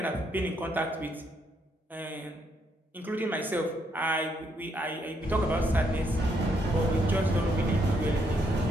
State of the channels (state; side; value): normal; both; correlation 0.75